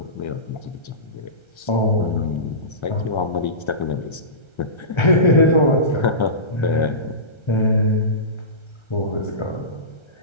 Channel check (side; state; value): right; late; 1.3 ms